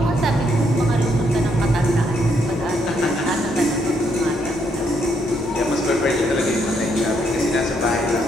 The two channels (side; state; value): both; normal; correlation 0.74